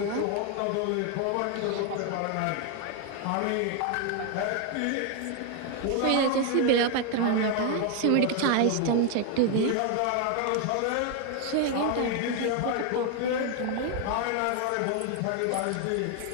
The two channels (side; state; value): both; different; correlation 0.01